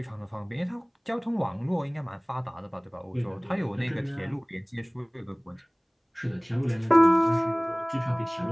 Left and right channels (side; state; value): both; identical; correlation 1.00